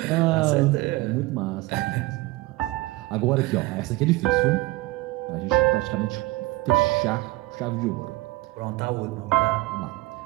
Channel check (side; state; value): left; quieter; 20.0 dB